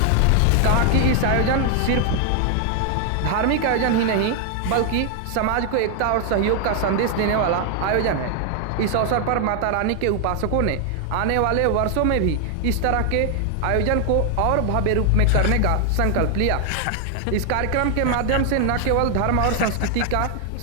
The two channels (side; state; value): both; different; correlation 0.00